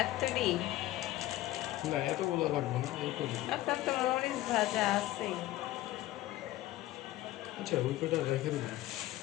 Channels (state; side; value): quieter; right; 15.8 dB